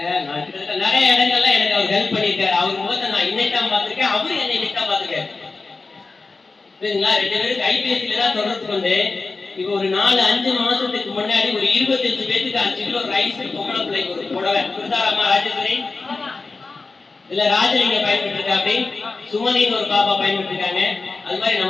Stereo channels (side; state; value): right; quieter; 3.9 dB